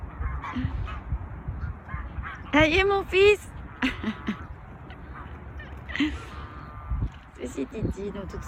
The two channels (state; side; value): identical; both; correlation 1.00